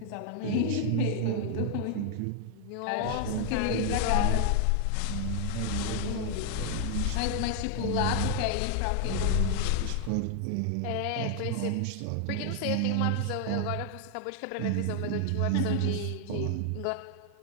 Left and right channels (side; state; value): both; different; correlation 0.00